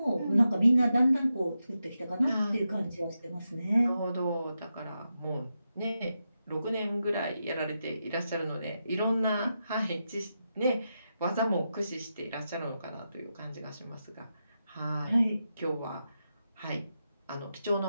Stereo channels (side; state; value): both; inverted; correlation -0.88